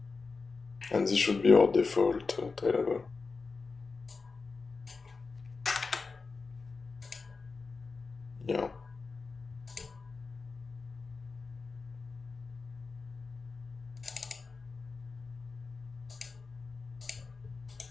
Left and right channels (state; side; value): quieter; right; 4.4 dB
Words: And this should be our default Tailable. Yeah.